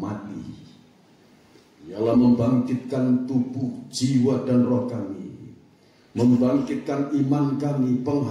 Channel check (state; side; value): identical; both; correlation 1.00